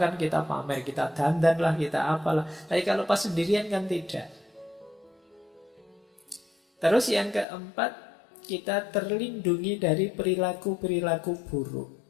kita pamer, kita dandan lah, kita apalah. Tapi kalau pas sendirian kan tidak. Terus yang keempat, kita terlindungi dari perilaku-perilaku buruk.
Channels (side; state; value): right; drops out; at 7.5 s